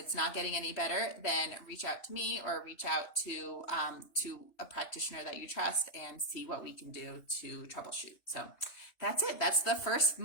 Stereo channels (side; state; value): right; late; 3.0 ms